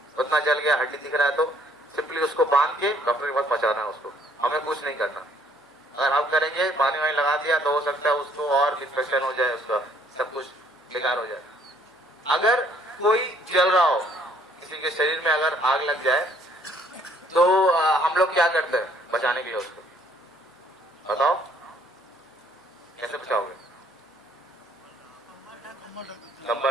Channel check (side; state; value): both; normal; correlation 0.63